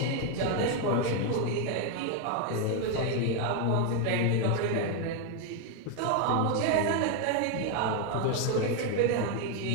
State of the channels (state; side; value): different; both; correlation 0.01